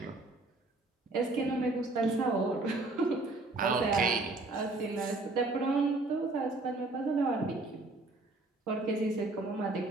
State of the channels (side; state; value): left; quieter; 3.1 dB